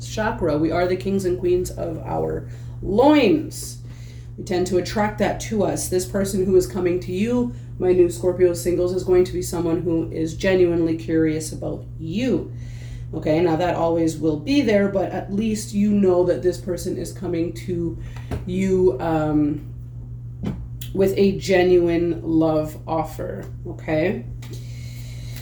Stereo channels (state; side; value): identical; both; correlation 1.00